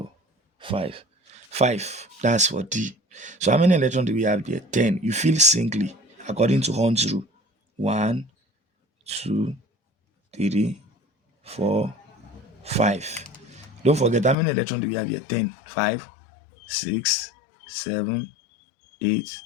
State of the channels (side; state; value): right; drops out; at 14.4 s